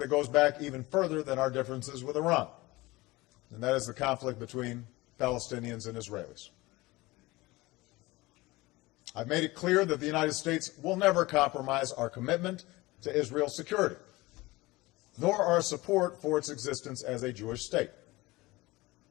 goes back even further than our differences with Iran, and that is the conflict between Palestinians and Israelis. I've made it clear that the United States will never compromise our commitment to Israel's security, nor our support for its existence as a Jewish state.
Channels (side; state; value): right; quieter; 20.9 dB